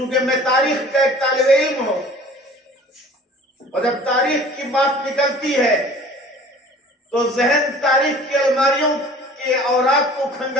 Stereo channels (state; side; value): normal; both; correlation 0.47